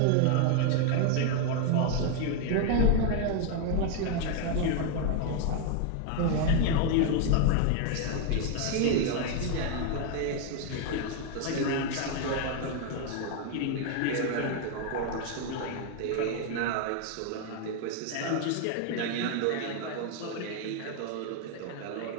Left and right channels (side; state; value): both; different; correlation 0.00